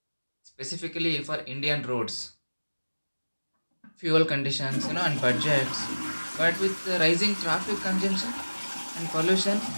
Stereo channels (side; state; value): both; inverted; correlation -1.00